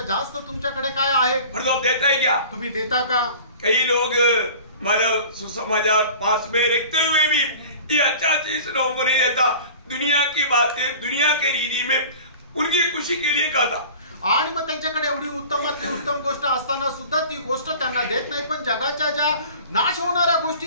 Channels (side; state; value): both; inverted; correlation -0.41